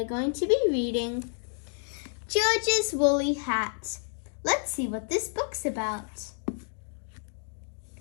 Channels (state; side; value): silent; right; 58 dB below the other